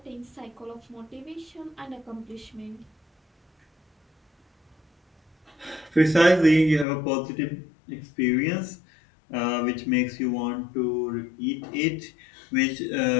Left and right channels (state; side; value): drops out; right; at 6.9 s